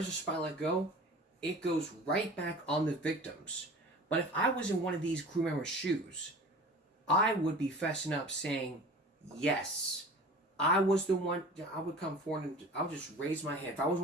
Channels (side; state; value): both; normal; correlation 0.40